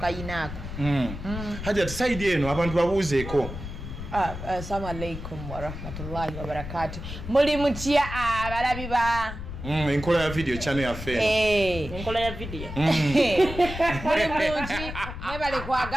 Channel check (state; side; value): noise; left; rumble, 9 dB below the sound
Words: Hajati saidi eno abantu babuuzeeko. Assalamu alaikum wa rahmatullahi wa barakatuh. Muli mutya abalabi ba enkola ya video channel yaffe enkola ya video muli bulungi mwebale